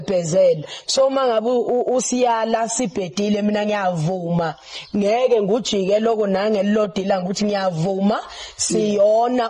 so mangabe usiyala sibhedile mina ngiyavuma ngeke ngujike lokho nangelilodila ukuthi ngiyavuma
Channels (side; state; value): both; identical; correlation 1.00